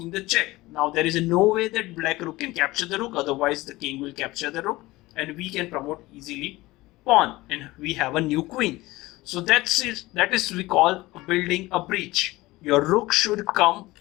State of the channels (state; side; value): quieter; right; 19.4 dB